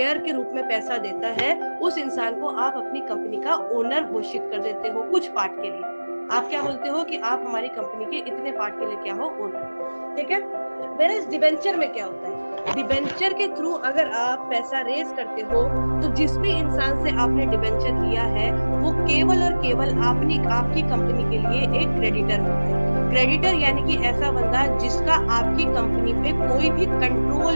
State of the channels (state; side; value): inverted; both; correlation -1.00